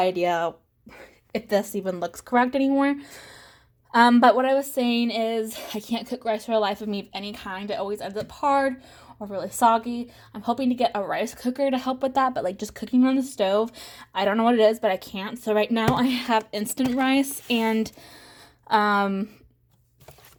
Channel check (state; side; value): identical; both; correlation 1.00